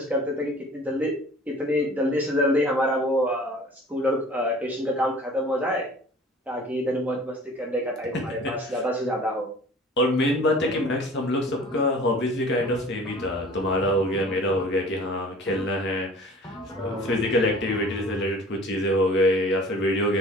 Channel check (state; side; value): normal; both; correlation 0.47